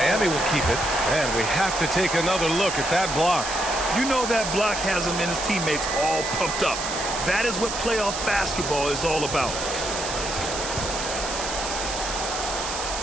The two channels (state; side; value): noise; right; hiss, 5 dB below the sound